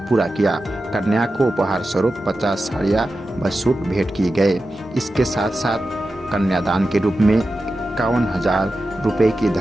किया। कन्या को उपहार स्वरूप 50 साड़ियाँ व सूट भेंट किए गए। इसके साथ साथ कन्यादान के रूप में 51,000 रुपए की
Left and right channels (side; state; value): both; normal; correlation 0.92